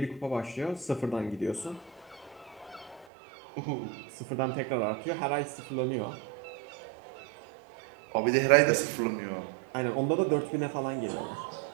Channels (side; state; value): left; drops out; at 3.1 s